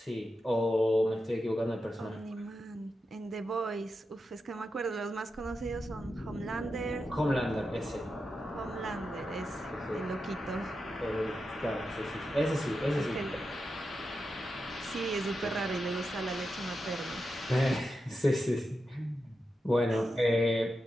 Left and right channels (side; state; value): both; normal; correlation 0.88